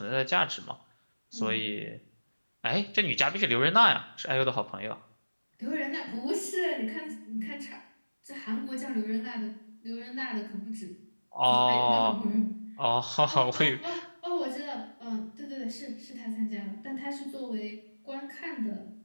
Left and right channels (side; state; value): both; inverted; correlation -1.00